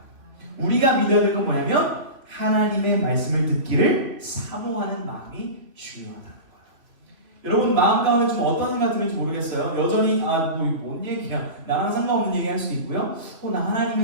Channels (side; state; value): left; late; 2.8 ms